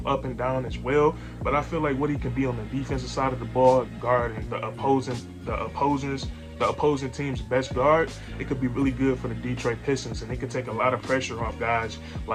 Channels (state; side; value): identical; both; correlation 1.00